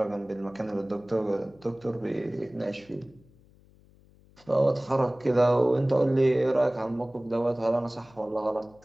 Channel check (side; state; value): left; noise; hum, 28 dB below the sound